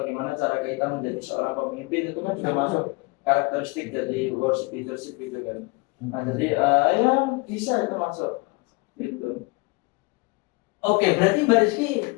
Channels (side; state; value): right; quieter; 26.8 dB